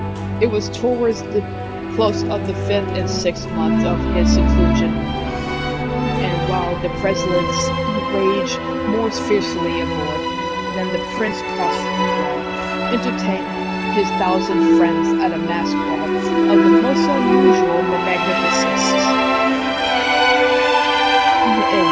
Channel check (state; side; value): identical; both; correlation 1.00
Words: It was towards the close of the 5th and 6th month of his seclusion, and while the presidents raged more fiercely aboard than the Prince Prospero entertained his 1,000 friends at a mass ball of the most unusual magnificence.